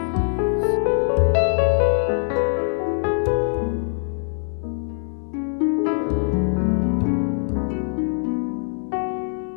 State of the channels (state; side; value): silent; right; 57 dB below the other